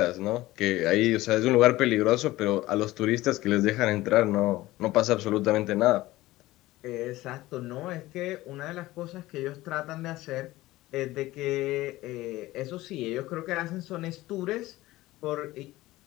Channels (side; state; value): right; quieter; 17.7 dB